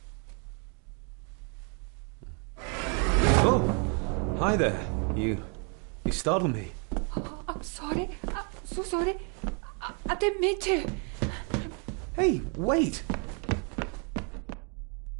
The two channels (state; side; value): quieter; left; 38.4 dB